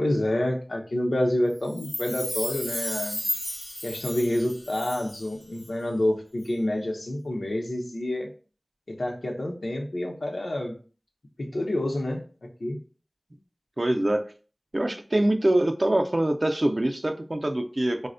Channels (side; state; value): both; normal; correlation 0.98